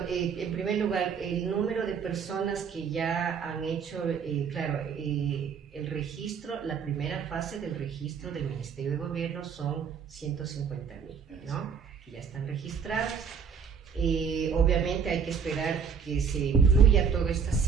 primer lugar, el número de personas que ya han hecho, el registro, la primera fase del registro del Ministerio de Gobierno son 150,000, ¿no? Que ya están registrados. Obviamente hay que esperar que se incluya todas estas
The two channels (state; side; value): quieter; left; 6.5 dB